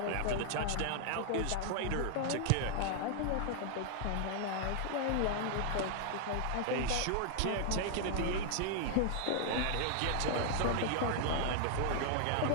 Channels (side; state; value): both; different; correlation 0.00